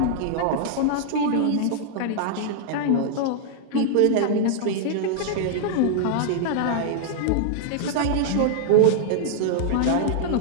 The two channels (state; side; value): different; both; correlation -0.01